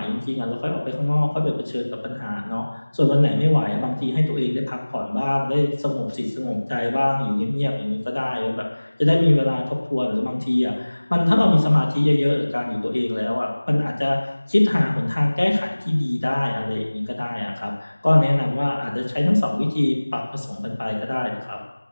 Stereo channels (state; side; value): inverted; both; correlation -1.00